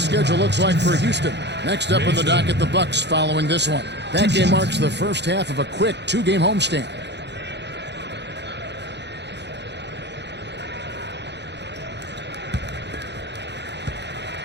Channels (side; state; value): left; late; 0.50 ms